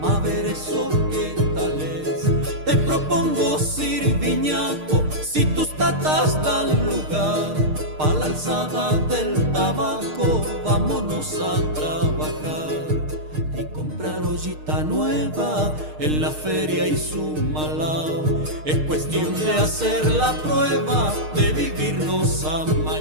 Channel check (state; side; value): late; left; 6.5 ms